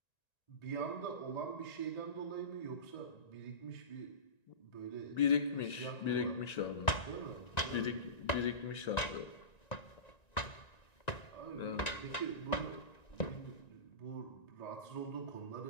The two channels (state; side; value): late; right; 1.9 ms